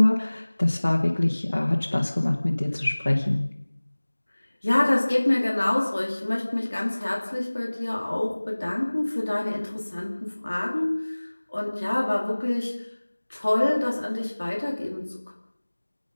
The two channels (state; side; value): inverted; both; correlation -1.00